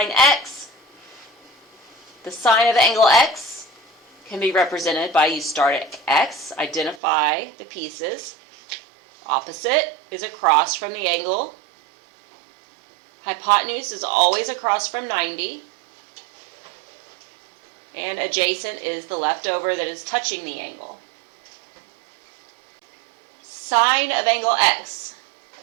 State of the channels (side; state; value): left; drops out; at 7.0 s